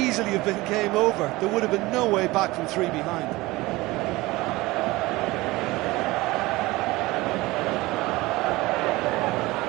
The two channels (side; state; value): left; quieter; 20.5 dB